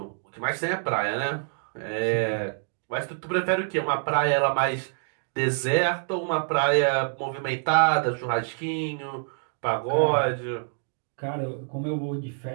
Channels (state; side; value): silent; left; digital silence